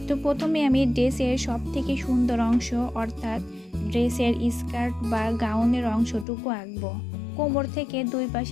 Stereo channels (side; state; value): right; drops out; at 6.2 s